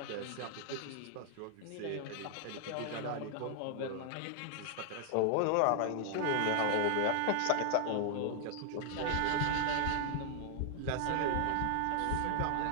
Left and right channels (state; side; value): different; both; correlation 0.00